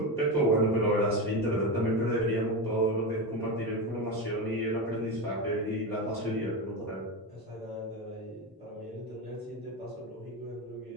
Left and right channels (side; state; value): both; normal; correlation 0.17